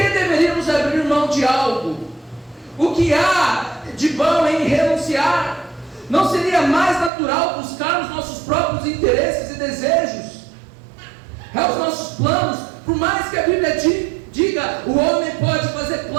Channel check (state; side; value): drops out; left; at 7.1 s